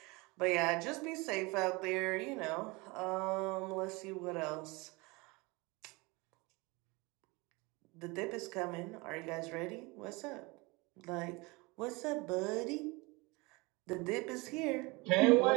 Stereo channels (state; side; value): quieter; left; 25.5 dB